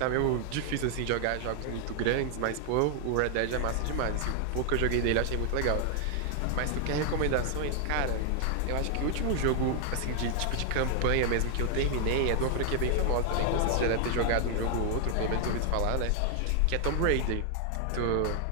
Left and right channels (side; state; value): both; different; correlation 0.00